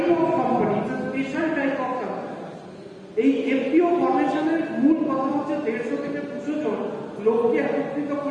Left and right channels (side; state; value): both; identical; correlation 1.00